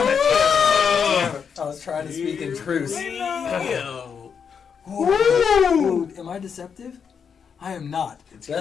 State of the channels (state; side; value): quieter; right; 6.7 dB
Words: I was trying to speak in truth. Ooh, am I deceptive? I am not.